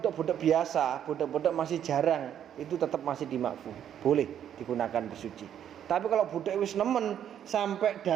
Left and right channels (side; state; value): left; quieter; 9.7 dB